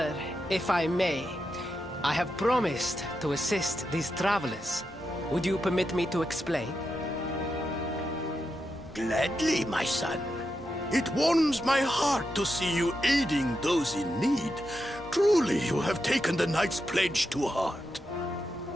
if I may, I have promised to assist these travelers. Would you permit me to explain? Gladly, my son. It warms my heart to see you aiding those in need. Truly, you have taken the knight's pledge to heart.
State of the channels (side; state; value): both; normal; correlation 0.86